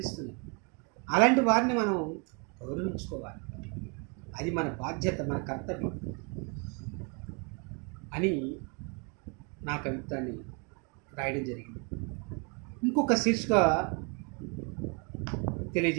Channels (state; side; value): quieter; left; 34.5 dB